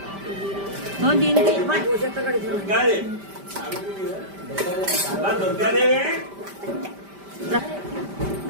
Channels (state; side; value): late; left; 5.1 ms